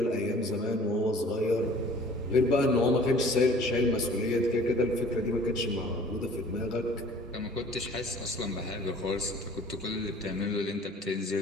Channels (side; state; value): both; normal; correlation 0.50